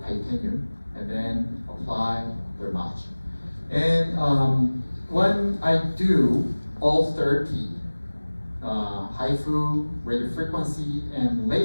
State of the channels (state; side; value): inverted; both; correlation -1.00